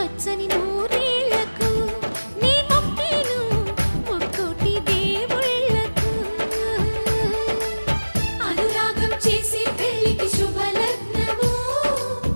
నూరేళ్లకు నీ మొక్కేను ముక్కోటి దేవుళ్ళకు అనురాగం చేసే పెళ్లికి శుభలగ్నము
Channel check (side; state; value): both; inverted; correlation -1.00